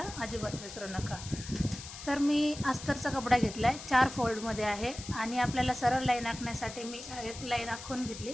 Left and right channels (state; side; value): noise; left; hiss, 12 dB below the sound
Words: अजिबात विसरू नका. तर मी अस्तरचा कपडा घेतला आहे, 4 फोल्डमध्ये आहे आणि आपल्याला सरळ लाईन आखण्यासाठी मी एक लाईन आखून घेतली